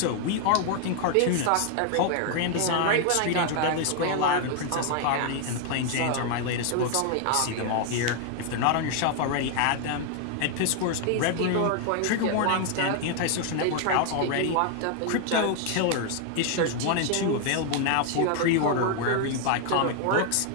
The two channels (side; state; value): both; different; correlation 0.00